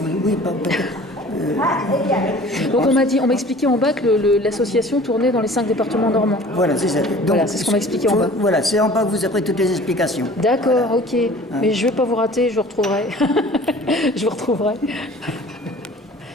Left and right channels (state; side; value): normal; both; correlation 0.46